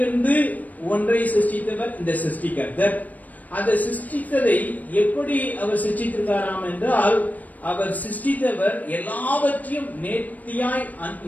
ஒன்றை சிருஷ்டித்தவர் இந்த சிருஷ்டி கர்த்தர். அந்த சிருஷ்டித்ததை எப்படி அவர் சிருஷ்டித்திருக்காராம் என்றால், அவர் சிருஷ்டித்தவர் எல்லாவற்றையும் நேர்த்தியாய்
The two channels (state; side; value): late; right; 0.077 ms